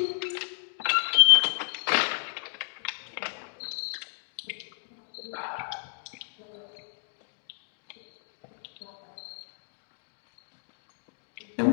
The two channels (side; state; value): right; silent; digital silence